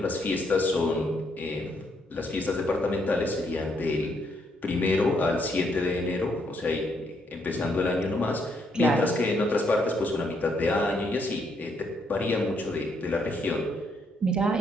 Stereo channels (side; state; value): both; normal; correlation 0.74